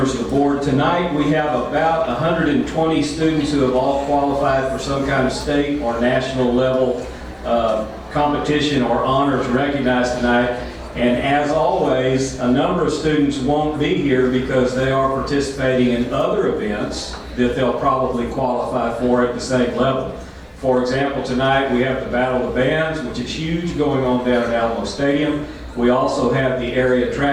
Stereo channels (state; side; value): identical; both; correlation 1.00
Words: of the board. Tonight we have about 120 students who have all qualified for some kind of state or national level competition or honors recognized tonight. And as always, a number of students won't be here because they are participating in other events that they'll probably qualify for at the same level. For example, tonight we have the Battle of the Bands, which is huge, going on down at Alamo Stadium. We also have the area